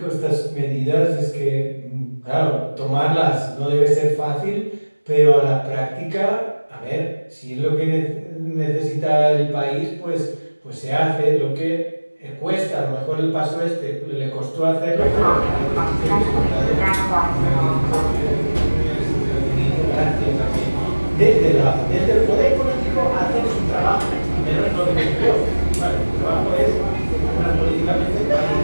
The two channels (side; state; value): both; inverted; correlation -1.00